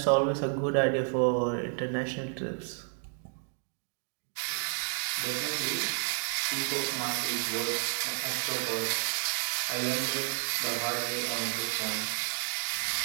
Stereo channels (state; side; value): silent; left; 55 dB below the other